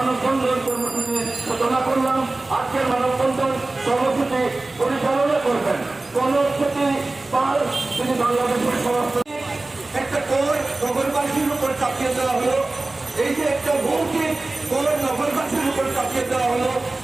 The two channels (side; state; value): left; quieter; 3.1 dB